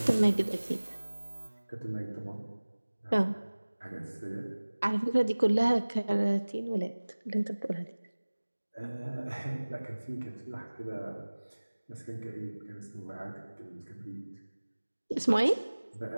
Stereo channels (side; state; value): both; inverted; correlation -1.00